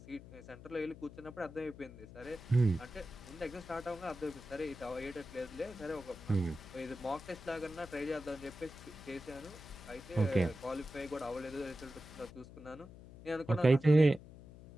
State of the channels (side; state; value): left; noise; hum, 17 dB below the sound